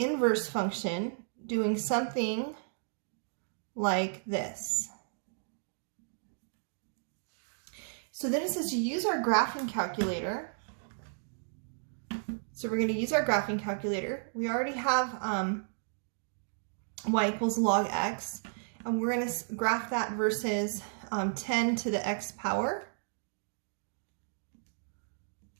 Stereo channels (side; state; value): left; silent; digital silence